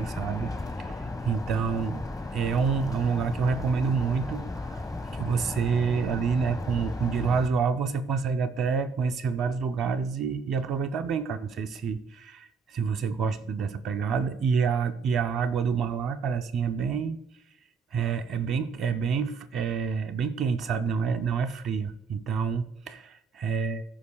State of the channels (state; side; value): quieter; left; 5.0 dB